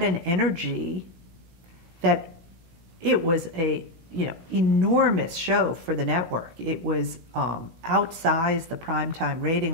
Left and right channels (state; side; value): late; left; 16 ms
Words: an energy that it was a, enormous show for the network. It was outsized the primetime